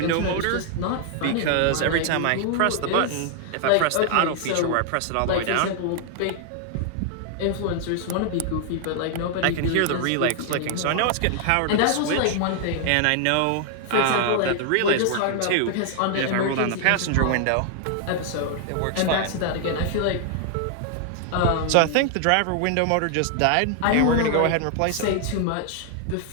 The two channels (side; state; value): both; different; correlation 0.00